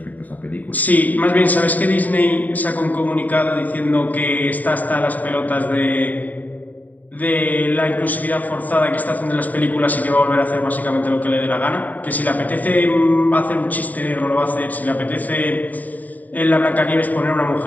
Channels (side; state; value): right; late; 0.080 ms